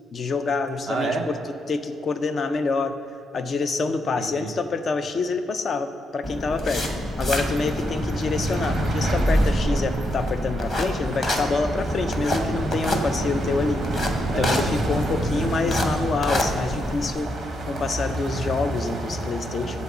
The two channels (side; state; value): both; normal; correlation 0.81